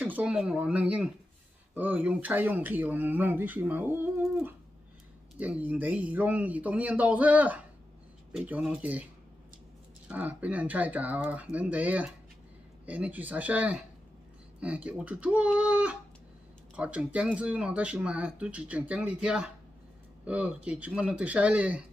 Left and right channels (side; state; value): both; normal; correlation 0.90